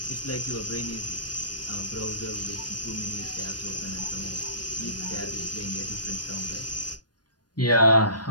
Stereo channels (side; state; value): right; late; 0.69 ms